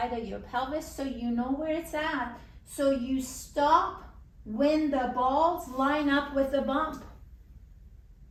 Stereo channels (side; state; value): both; identical; correlation 1.00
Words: of your pelvis so you know where it's at. So you stop when the balls line up with the bump.